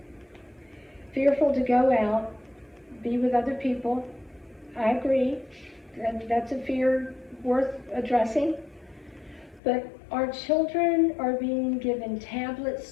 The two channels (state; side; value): drops out; right; at 9.6 s